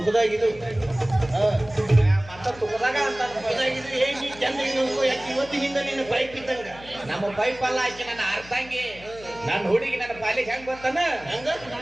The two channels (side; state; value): left; noise; hum, 20 dB below the sound